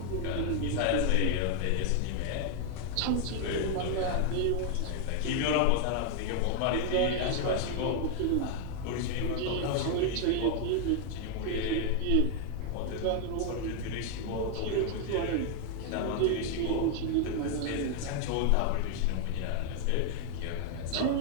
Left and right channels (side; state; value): both; different; correlation 0.00